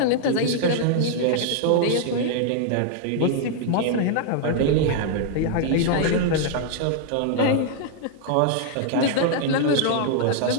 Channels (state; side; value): different; both; correlation 0.00